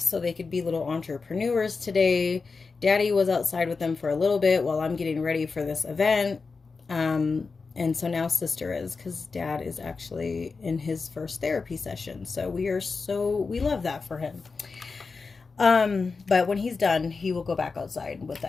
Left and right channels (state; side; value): quieter; right; 4.5 dB